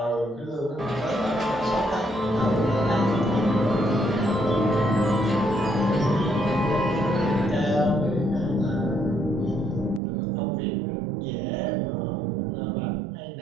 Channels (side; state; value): left; drops out; at 10.0 s